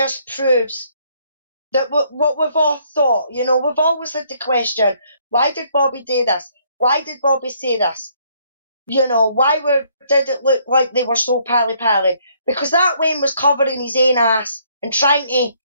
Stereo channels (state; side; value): inverted; both; correlation -0.67